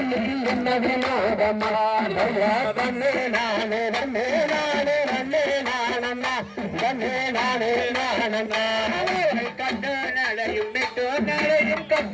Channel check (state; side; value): identical; both; correlation 1.00